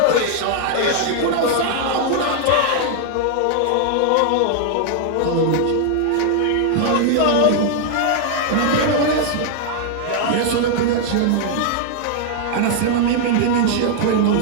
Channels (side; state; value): both; different; correlation 0.00